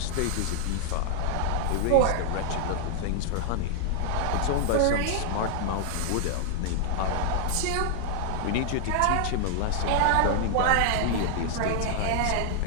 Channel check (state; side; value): different; both; correlation -0.01